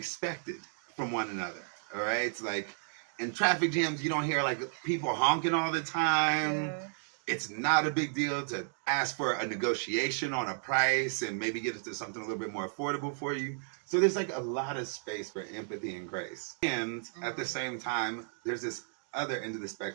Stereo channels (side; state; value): left; silent; digital silence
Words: from one another. All right. It's like in traffic jams, you don't hear like people honking all the time. Yeah. It's not a big deal to ask for a negotiation on a price and maybe get it to something a little bit more affordable for you. So there's like a lot of space for empathy and grace. And at the same time, there's this other end of the